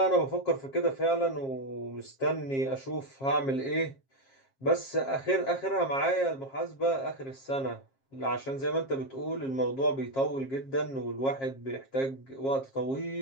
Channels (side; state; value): right; late; 7.4 ms